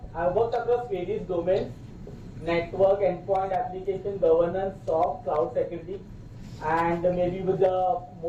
I've worked across various domains, network, endpoint, application, governance, SOC, cloud security, and maybe with the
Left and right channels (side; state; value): both; identical; correlation 1.00